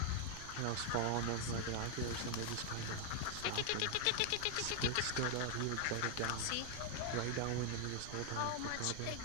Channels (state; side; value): different; both; correlation 0.00